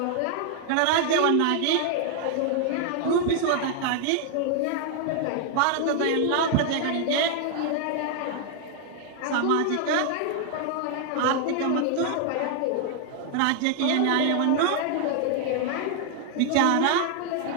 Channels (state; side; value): different; both; correlation 0.00